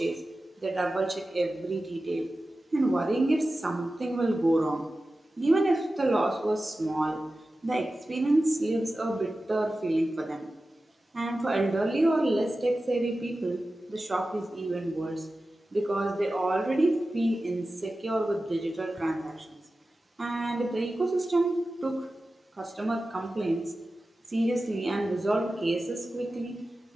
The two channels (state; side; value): normal; both; correlation 0.94